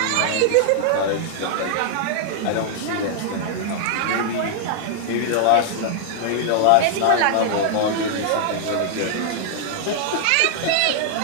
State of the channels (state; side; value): different; both; correlation -0.01